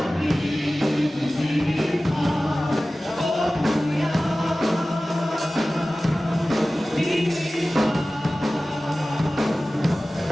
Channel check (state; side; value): normal; both; correlation 0.97